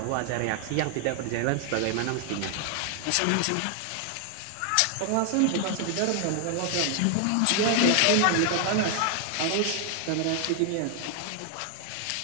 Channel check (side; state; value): both; different; correlation 0.00